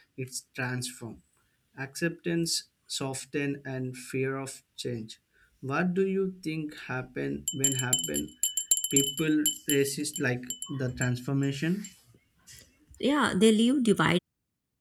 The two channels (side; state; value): both; identical; correlation 1.00